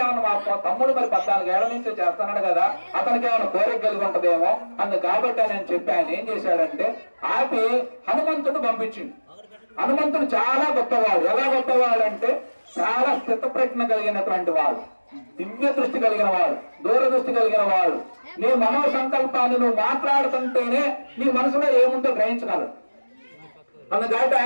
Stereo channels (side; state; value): both; inverted; correlation -1.00